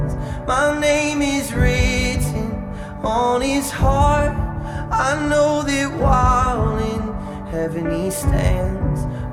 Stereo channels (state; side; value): identical; both; correlation 1.00